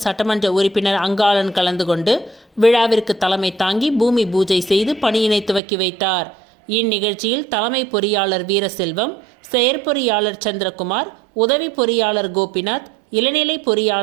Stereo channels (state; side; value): drops out; left; at 5.6 s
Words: சட்டமன்ற உறுப்பினர் அங்காளன் கலந்து கொண்டு விழாவிற்கு தலைமை தாங்கி பூமி பூஜை செய்து பணியினை துவக்கி வைத்தார். இந்நிகழ்ச்சியில் தலைமை பொறியாளர் வீரசெல்வம், செயற்பொறியாளர் சந்திரகுமார், உதவி பொறியாளர் கோபிநாத், இளநிலை